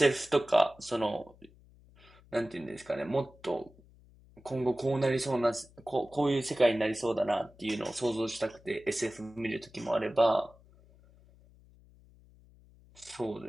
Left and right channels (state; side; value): noise; left; hum, 26 dB below the sound